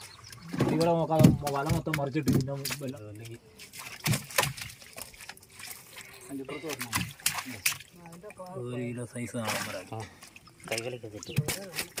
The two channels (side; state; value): both; identical; correlation 1.00